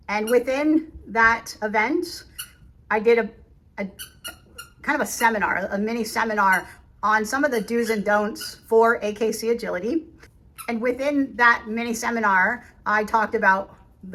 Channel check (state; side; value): identical; both; correlation 1.00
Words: And within that event, I did a kind of a seminar, a mini seminar on some of the do's and don'ts for AKC agility. And within that mini seminar, I talked about